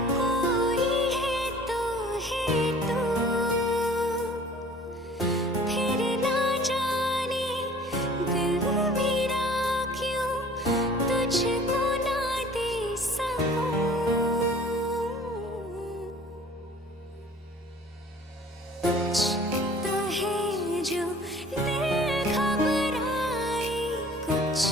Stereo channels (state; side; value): normal; both; correlation 0.49